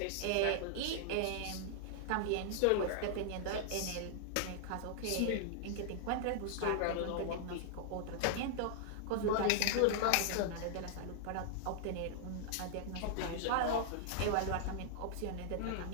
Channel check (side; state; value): both; different; correlation -0.01